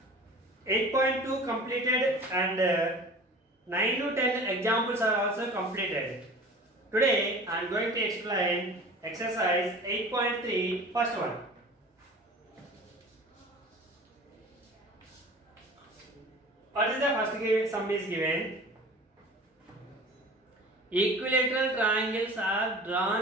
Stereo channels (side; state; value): both; normal; correlation 0.41